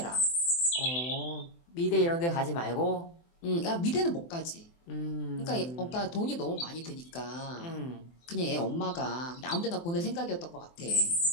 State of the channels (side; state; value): right; late; 24 ms